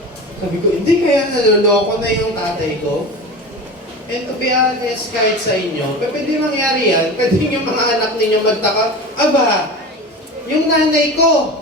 sabi ko, hindi kaya naloloko na yung tatay ko? And to be honest, kahit sa inyo, pwede mangyari yan, pwede yung mga anak ninyo magtaka, aba, yung nanay ko,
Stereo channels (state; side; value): normal; both; correlation 0.30